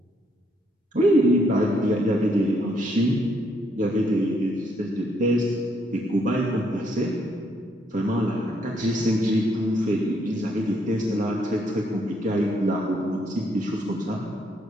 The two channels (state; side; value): normal; both; correlation 0.72